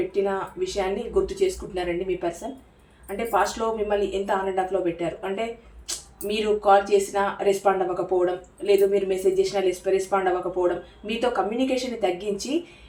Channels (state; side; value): identical; both; correlation 1.00